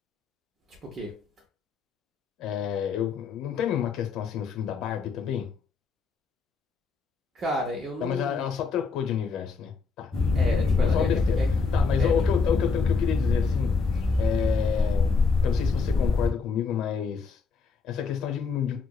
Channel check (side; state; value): right; quieter; 4.7 dB